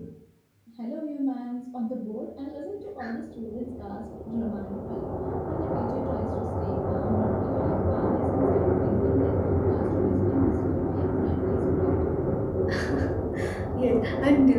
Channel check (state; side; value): identical; both; correlation 1.00